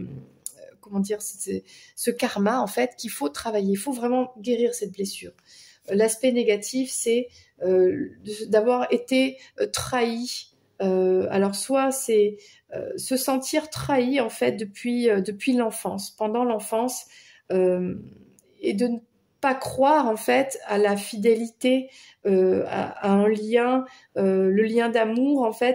dire, ce karma en fait qu'il faut travailler, il faut vraiment guérir cette blessure. L'aspect négatif, c'est d'avoir été trahi. Alors soit c'est se sentir trahi en fait depuis l'enfance, pendant l'enfance, et de ne pas croire en fait à la fidélité, à un lien, le lien d'amour en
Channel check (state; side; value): identical; both; correlation 1.00